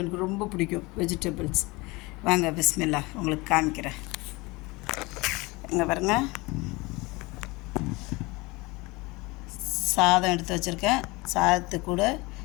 எனக்கு ரொம்ப பிடிக்கும். வெஜிடபிள்ஸ் வாங்க பிஸ்மில்லா உங்களுக்கு காமிக்கிறேன். இங்கே பாருங்க, சாதம் எடுத்து வச்சுருக்கேன். சாதத்து கூட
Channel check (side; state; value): right; quieter; 23.9 dB